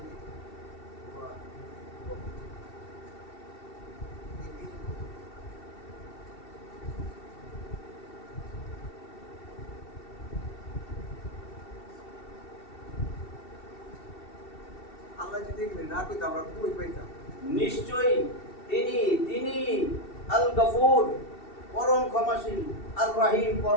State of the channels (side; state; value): right; late; 2.7 ms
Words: আল্লাহ যদি এগুলি না কইতো আমরা কই পাইতাম? নিশ্চয়ই তিনি তিনি আল গফুর পরম ক্ষমাশীল, আর রহিম